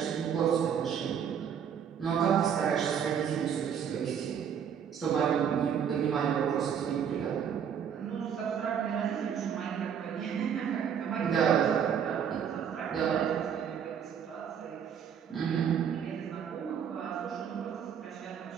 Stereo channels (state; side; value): quieter; left; 8.0 dB